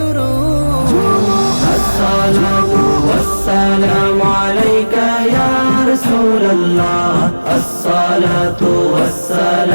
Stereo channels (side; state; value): both; inverted; correlation -1.00